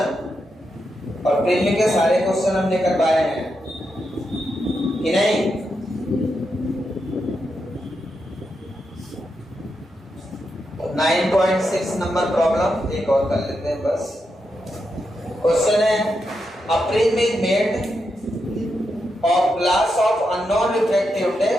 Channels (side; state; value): both; normal; correlation 0.85